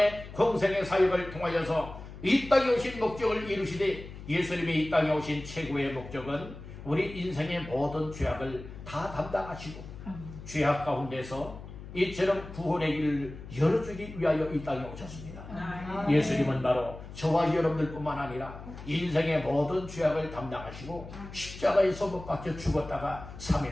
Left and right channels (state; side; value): noise; left; hum, 13 dB below the sound